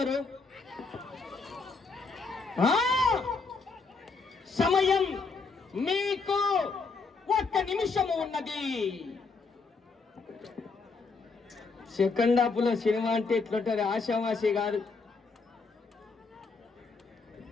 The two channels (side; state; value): right; quieter; 4.3 dB